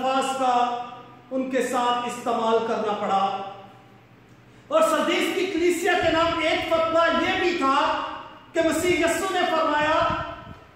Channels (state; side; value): identical; both; correlation 1.00